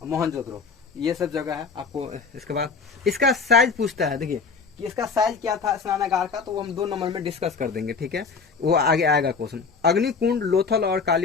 मोहनजोदड़ो, ये सब जगह है आपको। इसके बाद इसका साइज पूछता है, देखिए कि इसका साइज क्या था स्नानागार का, तो वो हम 2 नंबर में डिस्कस कर देंगे, ठीक है, वो आगे आएगा क्वेश्चन। अग्निकुंड लोथल और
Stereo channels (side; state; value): right; quieter; 5.0 dB